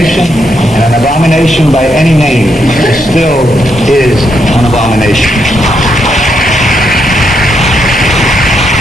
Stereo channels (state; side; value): normal; both; correlation 0.79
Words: and an abomination by any name still is an abomination.